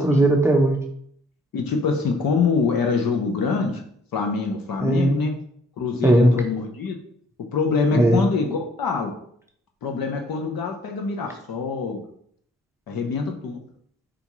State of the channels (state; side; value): normal; both; correlation 0.61